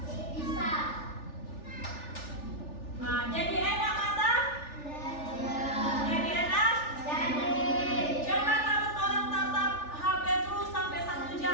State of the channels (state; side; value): late; right; 3.4 ms